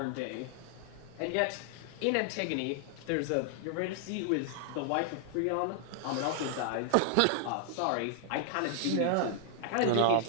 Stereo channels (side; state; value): both; different; correlation 0.00